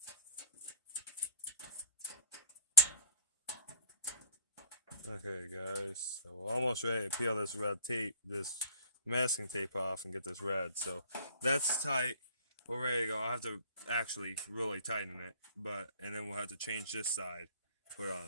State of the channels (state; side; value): inverted; both; correlation -0.47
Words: Okay guys, so we're almost ready to peel this red tape, this masking tape off and get this red. So that's tight. We're ready to go. I have to actually really tighten it, and then we'll have to change this side, put